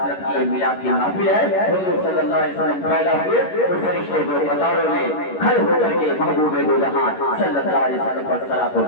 کی میلاد کی محفل ہے حضور صلی اللہ علیہ وسلم پیدا ہوئے تو فرشتے کو قطاروں میں کھڑے ہو کر کے محبوب دو جہاں صلی اللہ علیہ وسلم پر صلاۃ و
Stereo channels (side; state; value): right; late; 11 ms